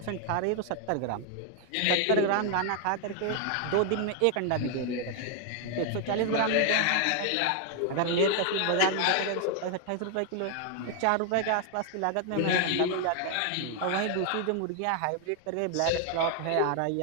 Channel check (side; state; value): both; different; correlation 0.00